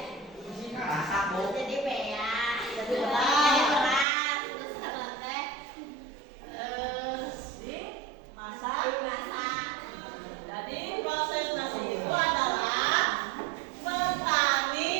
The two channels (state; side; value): drops out; left; at 4.0 s